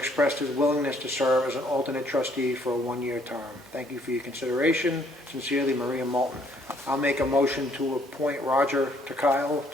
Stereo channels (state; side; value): normal; both; correlation 0.65